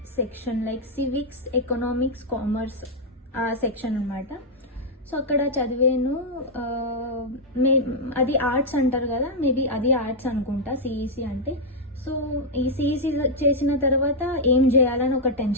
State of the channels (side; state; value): both; normal; correlation -0.04